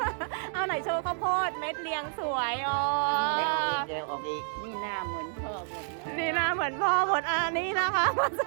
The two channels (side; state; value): left; silent; 56 dB below the other